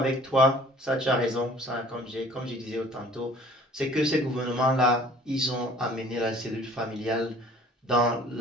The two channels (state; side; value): normal; both; correlation 0.51